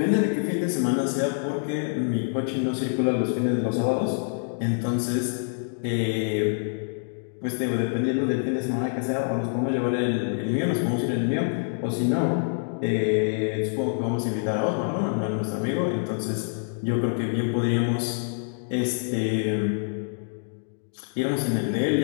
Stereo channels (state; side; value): silent; right; digital silence